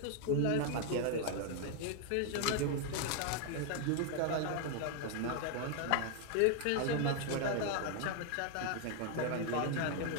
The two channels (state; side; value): different; both; correlation 0.00